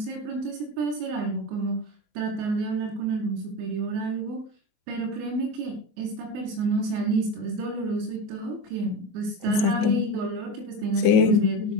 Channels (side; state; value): left; late; 24 ms